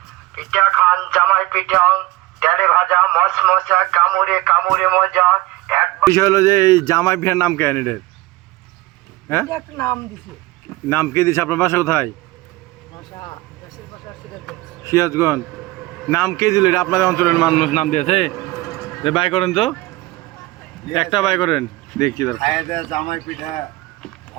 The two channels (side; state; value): left; quieter; 19.4 dB